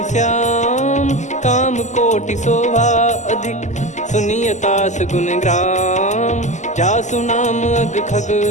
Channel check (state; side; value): late; right; 0.34 ms